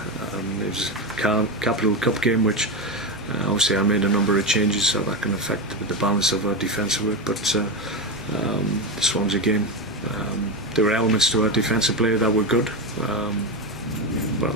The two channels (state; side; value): normal; both; correlation 0.14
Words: it was a Capital Cup game, which obviously I made a number of changes, so that can affect the balance of our defensive work. But the Swansea game, there were elements to our defensive play that were good, but